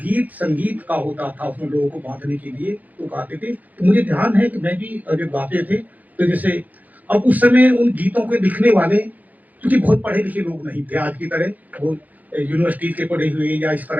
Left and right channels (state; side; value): late; left; 0.080 ms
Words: संगीत का होता था, उसमें लोगों को बांधने के लिए तो गाते थे। तो मुझे ध्यान है कि मैं भी जब गाते थे, तो जैसे अब उस समय उन गीतों के लिखने वाले क्योंकि बहुत पढ़े लिखे लोग नहीं थे आज की तरह, वो यूनिवर्सिटी के पढ़े हुए या इस